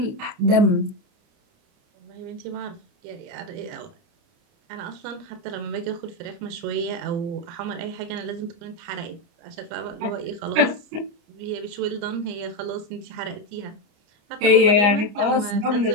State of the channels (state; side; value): late; left; 29 ms